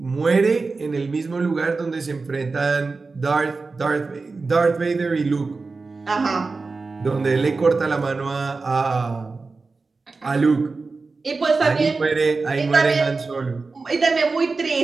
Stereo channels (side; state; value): left; quieter; 4.0 dB